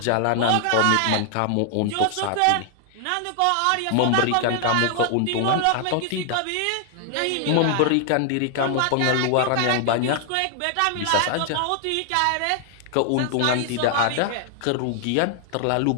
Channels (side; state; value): both; different; correlation 0.00